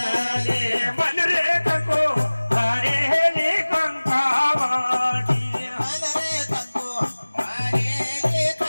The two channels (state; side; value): inverted; both; correlation -1.00